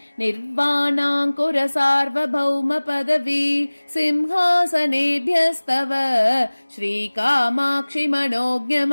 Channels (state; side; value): inverted; both; correlation -1.00